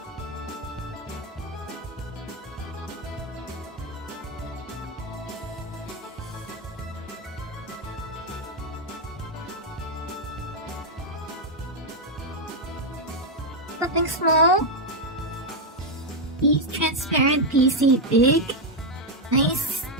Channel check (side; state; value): both; normal; correlation 0.02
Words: Something small? Transparent PC big?